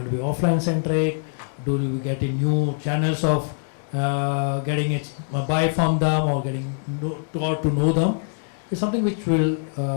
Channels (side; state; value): right; silent; digital silence